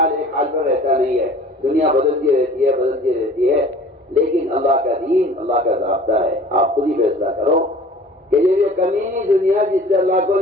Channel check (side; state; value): both; normal; correlation 0.47